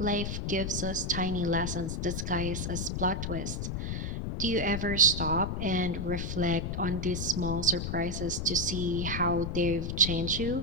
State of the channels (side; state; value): left; noise; rumble, 2 dB below the sound